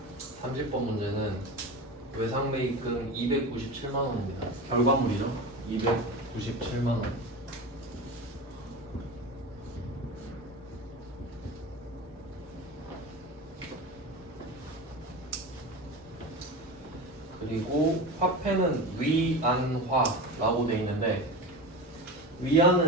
(30번) 문제는 외상매입금 297만원입니다. 결과물이죠. 297만원. 그리고 화폐는 위안화라고 되어 있는데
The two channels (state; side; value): normal; both; correlation 0.28